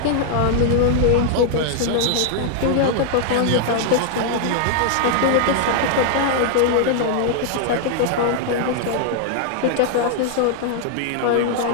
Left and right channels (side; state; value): both; different; correlation 0.00